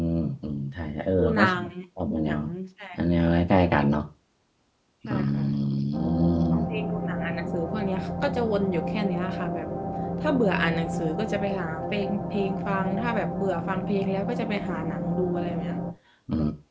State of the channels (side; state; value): both; identical; correlation 1.00